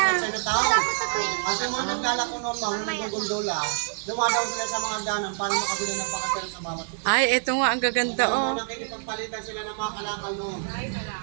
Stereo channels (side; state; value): left; silent; 61 dB below the other